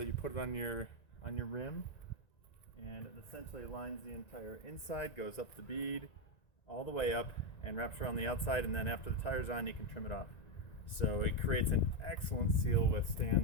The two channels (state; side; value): late; right; 1.9 ms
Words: you put it on your rim, and it essentially lines the entire inside, goes up the bead all the way up and wraps around the outside, and then after the tire's on you can trim it off. So it creates an excellent seal